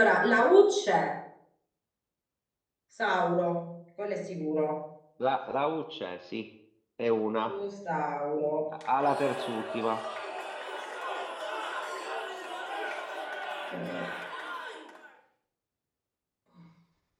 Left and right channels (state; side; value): identical; both; correlation 1.00